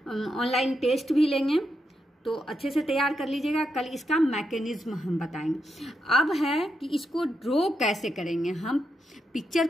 ऑनलाइन टेस्ट भी लेंगे, तो अच्छे से तैयार कर लीजिएगा। कल इसका मैकेनिज्म हम बताएंगे। अब है कि इसको ड्रॉ कैसे करेंगे, हम पिक्चर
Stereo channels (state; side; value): normal; both; correlation 0.83